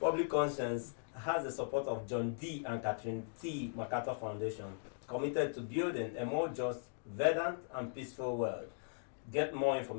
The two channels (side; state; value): right; silent; digital silence